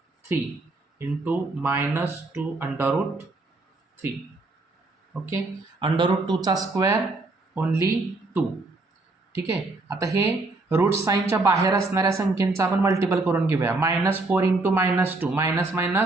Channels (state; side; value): quieter; left; 3.1 dB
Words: 3 into minus 2 under root 3. Okay. Under root 2 चा स्क्वेअर ओनली 2 ठीक आहे. आता हे रूट साईनच्या बाहेर असणाऱ्या संख्येचा आपण मल्टिपल करून घेऊया. -4 इंटू -2 मायनस